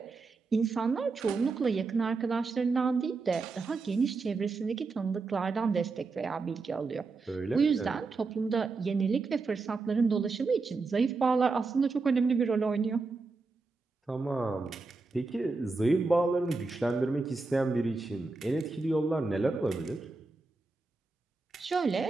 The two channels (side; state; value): left; quieter; 4.0 dB